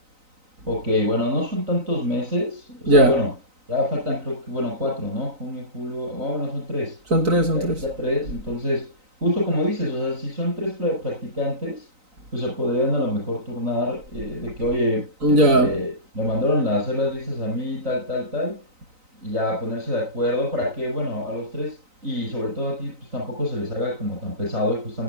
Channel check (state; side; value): late; left; 3.9 ms